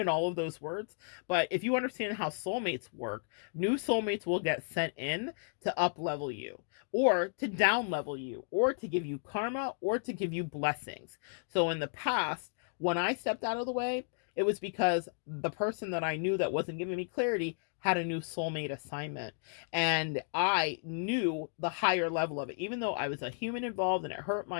all of those words, but if you understand how soulmates work, new soulmates will get sent in to up level you, or to down level you, or to give you karma, or to give you blessings. So in the past, when I stepped out of the way, it was because the person that I knew that wasn't giving me clarity had a new soulmate assignment. And I knew the higher level of it, even though I was a human involved and it hurt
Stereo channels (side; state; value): right; silent; digital silence